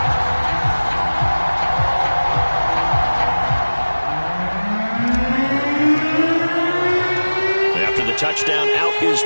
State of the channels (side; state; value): both; inverted; correlation -1.00